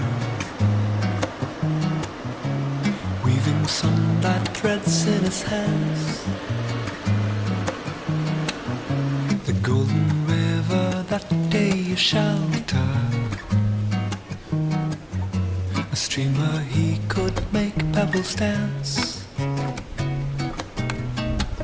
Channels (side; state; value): both; identical; correlation 1.00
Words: weaving sunlight threads in his hands. The golden river that day you shelter, a streamer he could make pebbles dance.